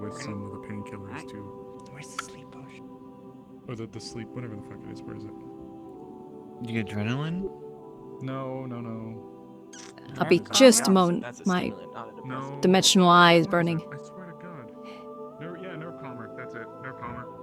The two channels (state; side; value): identical; both; correlation 1.00